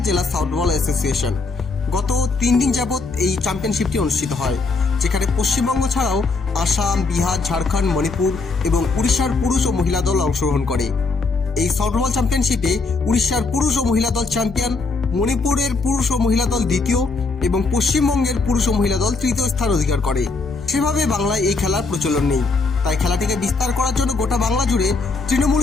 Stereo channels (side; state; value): right; quieter; 4.0 dB